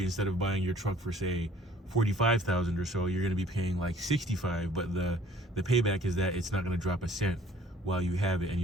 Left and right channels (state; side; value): normal; both; correlation 0.55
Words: instead of buying your truck for say 45,000 or so, you're going to be paying like 65. But the payback is that it's not going to drop a cent while you have it, and